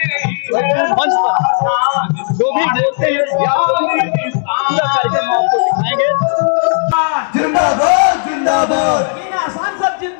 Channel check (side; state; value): right; silent; 70 dB below the other